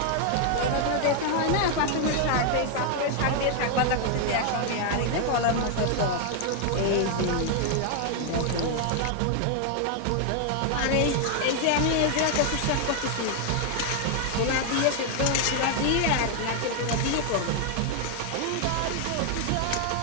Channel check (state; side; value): different; both; correlation 0.00